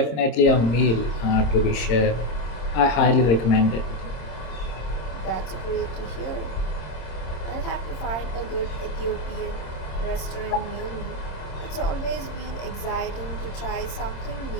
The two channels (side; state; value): right; late; 26 ms